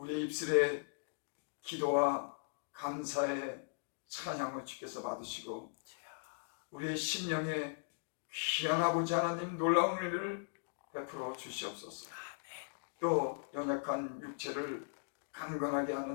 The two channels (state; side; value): silent; right; digital silence